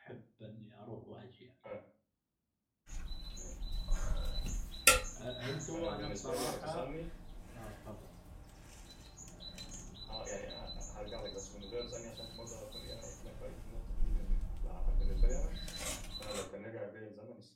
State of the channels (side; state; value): both; identical; correlation 1.00